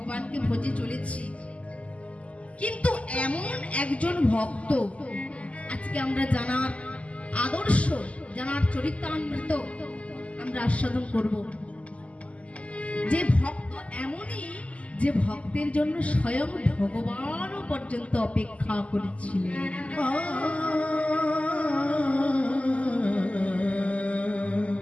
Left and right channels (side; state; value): right; late; 0.065 ms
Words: ভজে চলেছি। কিন্তু এমন একজন ভক্ত আজকে আমরা জানার আদর্শ, জানার চরিতামৃত আমরা আস্বাদন করব। যে ভক্ত এমনই, যে ভক্তের জন্য স্বয়ং ভগবানও পর্যন্ত অপেক্ষা করেছিলেন।